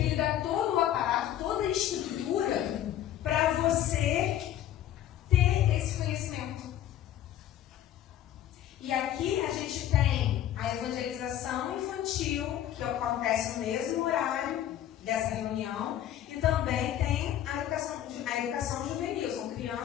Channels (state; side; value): quieter; right; 11.6 dB